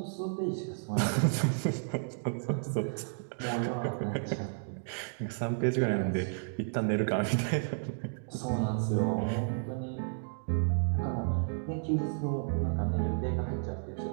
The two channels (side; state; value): left; silent; digital silence